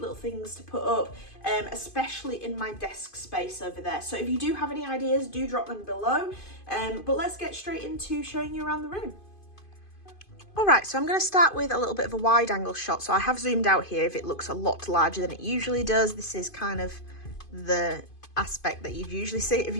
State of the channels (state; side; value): late; right; 2.5 ms